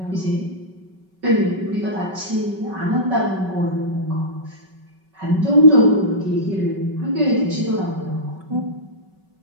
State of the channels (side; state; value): left; late; 5.3 ms